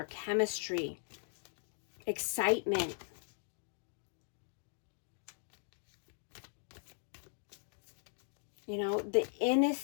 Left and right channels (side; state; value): right; silent; digital silence